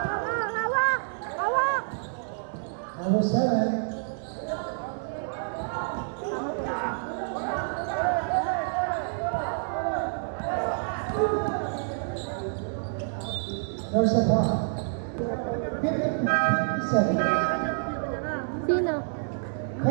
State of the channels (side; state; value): left; silent; digital silence